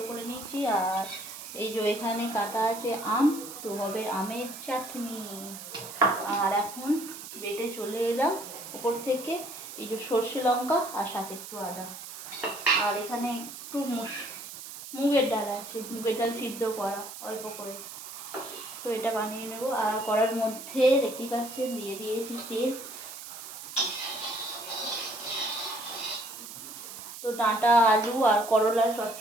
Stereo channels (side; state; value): right; noise; hiss, 11 dB below the sound